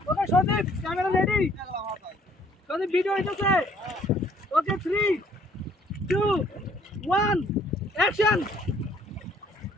okay Sadip camera ready Sadip video হইতেছে ওকে 3 2 1 অ্যাকশন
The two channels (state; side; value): normal; both; correlation 0.62